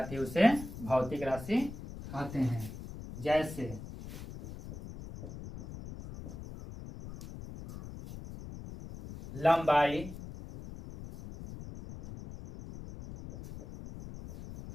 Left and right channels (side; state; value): left; noise; rumble, 12 dB below the sound